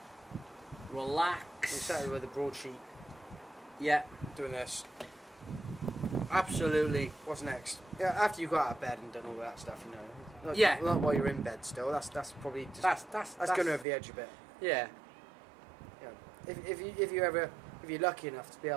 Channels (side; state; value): left; drops out; at 13.9 s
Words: relax. Exactly with the broadsheet. Yeah. Doing this. Absolutely. What's next? Yeah, after you got out of bed and done all that stuff, Not while you're in bed still. That's probably just, that's going over the edge a bit. Yeah. If you're lucky enough to be